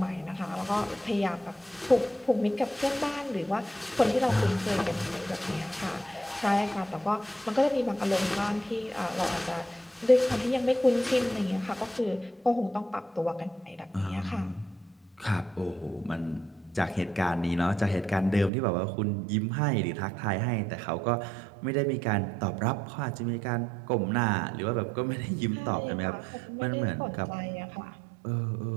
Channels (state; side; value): drops out; left; at 18.5 s